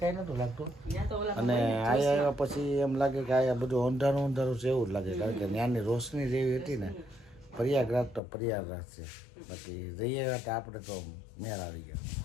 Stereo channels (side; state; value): right; drops out; at 8.2 s